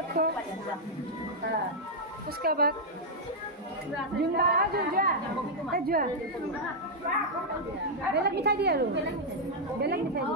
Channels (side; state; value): both; normal; correlation -0.04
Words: को उसका बाद জুনবা যোৱা বেলেগ মিঠাই দিয়ে আৰু বেলেগ মিঠাই